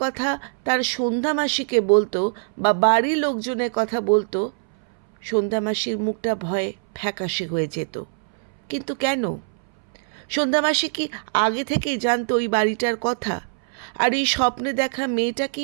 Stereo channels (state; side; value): silent; left; 62 dB below the other